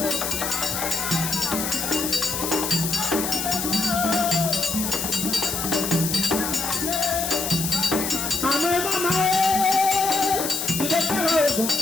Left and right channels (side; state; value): left; noise; hiss, 3 dB below the sound